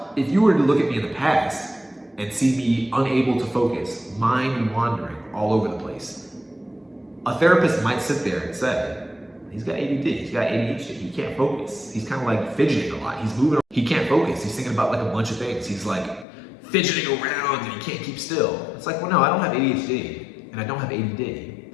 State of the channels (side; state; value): right; drops out; at 16.2 s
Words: if you were to look at me in the past and see me unable to focus, mind wandering all over the place, a therapist might sit there and say, he's got ADD, he's got ADHD, he can't focus. He's kind of like fidgeting a lot. He's moving, he can't focus. He's thinking about like a bunch of things. He's like fidgeting around and he can't keep still. It's like, well, no, I don't have ADHD and I don't have ADD.